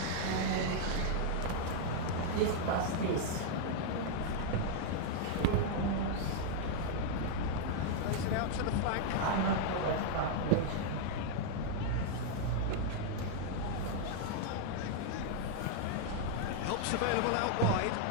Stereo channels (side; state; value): both; different; correlation 0.00